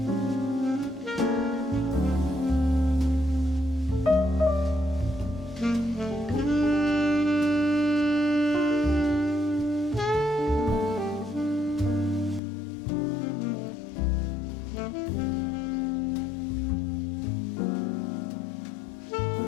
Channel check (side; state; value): right; drops out; at 12.4 s